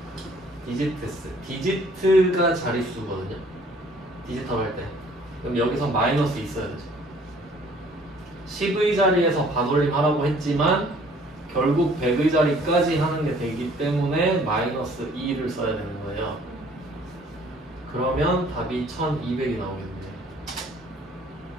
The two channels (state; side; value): normal; both; correlation 0.57